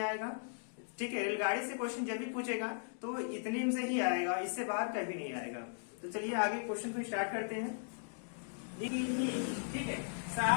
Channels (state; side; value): silent; right; digital silence